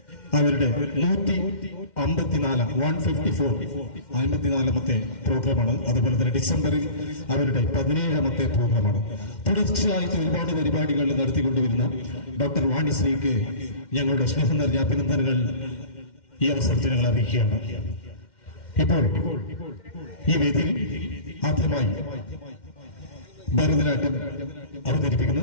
അവരുടെ 154ാമത്തെ പ്രോഗ്രാമാണ്. അതുപോലെ തന്നെ ഡിസംബറിൽ അവരുടെ 17ാമത്തെ പ്രോഗ്രാമാണ്. തുടർച്ചയായിട്ട് ഒരുപാട് പരിപാടികൾ നടത്തിക്കൊണ്ടുവരുന്ന ഡോക്ടർ വാണിശ്രീക്ക് ഞങ്ങളുടെ സ്നേഹം നിറഞ്ഞ അഭിനന്ദനങ്ങൾ ഈ അവസരത്തിൽ ഞങ്ങൾ അറിയിക്കുകയാണ്. ഇപ്പോൾ ഈ വേദിയിൽ ആദ്യമായി ഭരതനാട്യം അവതരിപ്പിക്കുന്നു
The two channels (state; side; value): late; right; 2.1 ms